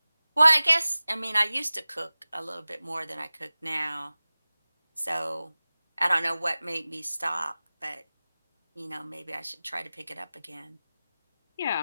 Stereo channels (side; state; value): both; inverted; correlation -0.98